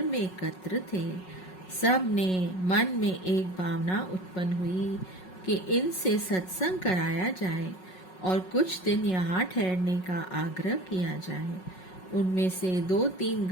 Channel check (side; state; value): right; late; 5.4 ms